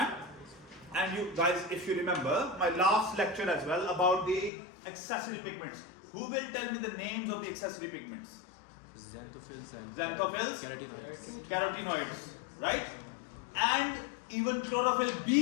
And you guys, if you remember my last lecture as well about the accessory pigments. Who will tell me the names of the accessory pigments? Xanthophylls and Xanthophylls, carotenoids, right? And even chlorophyll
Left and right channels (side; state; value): right; drops out; at 4.5 s